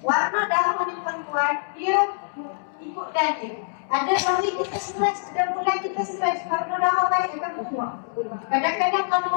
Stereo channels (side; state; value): right; silent; digital silence